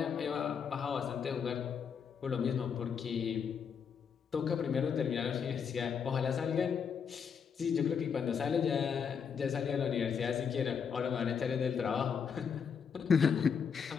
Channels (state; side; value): quieter; right; 6.8 dB